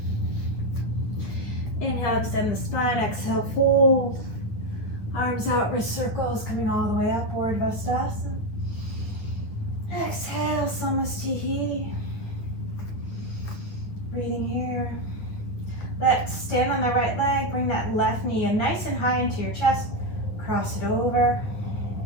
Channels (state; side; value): late; right; 9.4 ms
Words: Inhale, extend the spine. Exhale, fold. Arms out, wrist circles, coming all the way up, Urdhvadhanurasana. Exhale, Samastihi. Breathing here. Let's stand on the right leg, bring that left knee in nice and high into your chest. Cross it over.